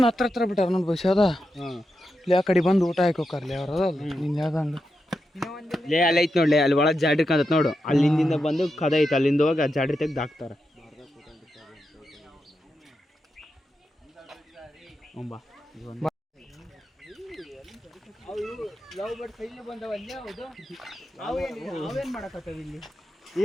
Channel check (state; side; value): normal; both; correlation 0.87